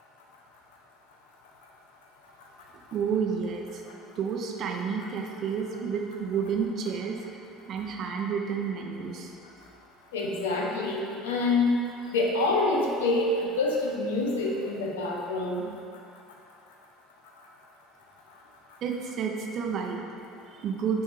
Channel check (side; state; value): both; normal; correlation 0.35